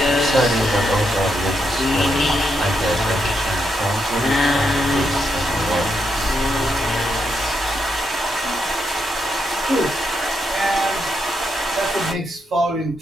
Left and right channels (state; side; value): normal; both; correlation 0.81